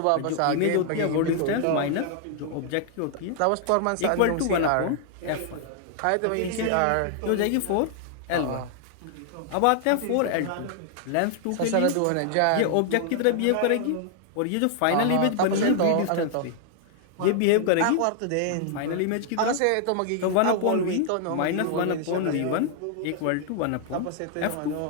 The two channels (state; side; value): different; both; correlation 0.00